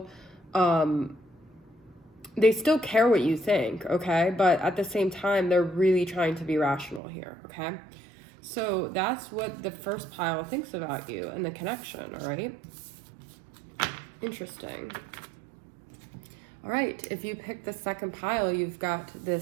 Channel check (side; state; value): left; drops out; at 7.0 s